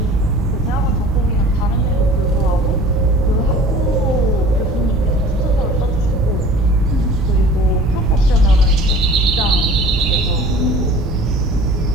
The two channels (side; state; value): both; normal; correlation 0.45